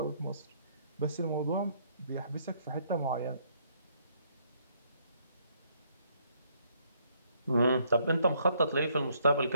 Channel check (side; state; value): both; inverted; correlation -0.68